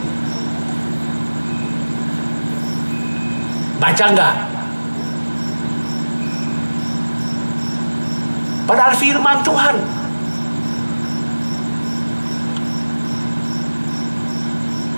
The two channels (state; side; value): inverted; both; correlation -1.00